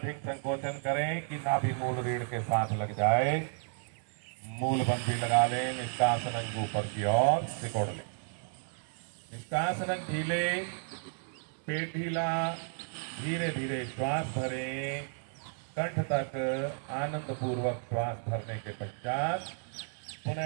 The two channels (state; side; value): silent; left; 56 dB below the other